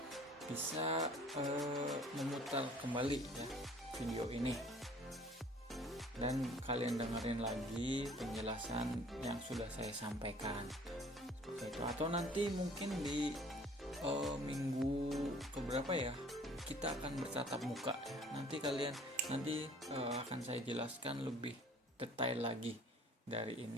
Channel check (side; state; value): both; normal; correlation 0.53